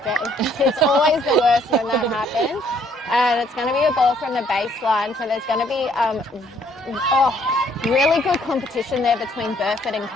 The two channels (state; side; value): normal; both; correlation 0.65